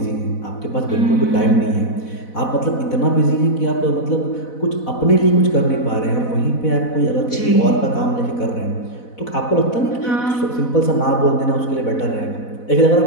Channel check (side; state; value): right; late; 4.1 ms